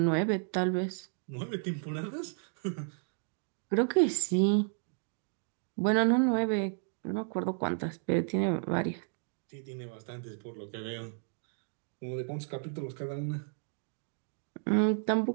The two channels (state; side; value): silent; left; 56 dB below the other